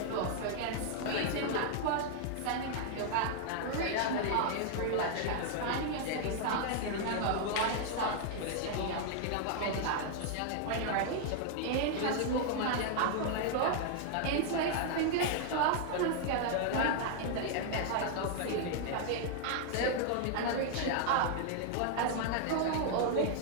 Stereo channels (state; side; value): different; both; correlation 0.00